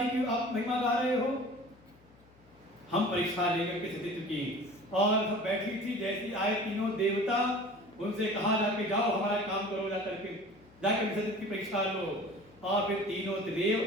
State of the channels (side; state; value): left; noise; hum, 28 dB below the sound